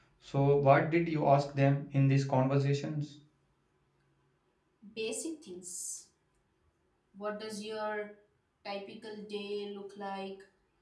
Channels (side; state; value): both; identical; correlation 1.00